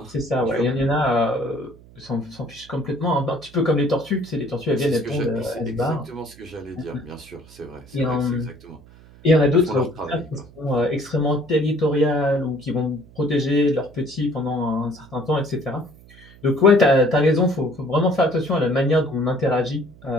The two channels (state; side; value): noise; right; hum, 23 dB below the sound